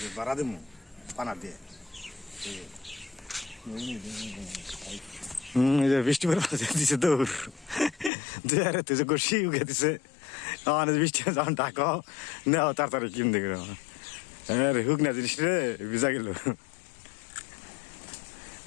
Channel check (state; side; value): drops out; right; at 8.1 s